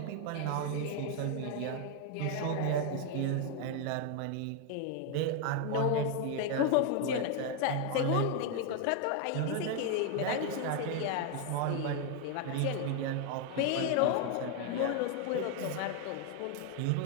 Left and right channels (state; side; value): different; both; correlation 0.01